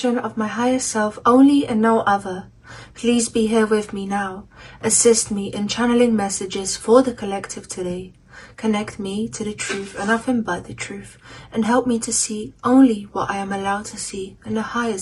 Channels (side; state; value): both; identical; correlation 1.00